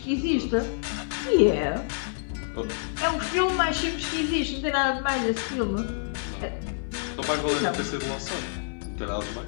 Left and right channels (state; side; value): silent; right; digital silence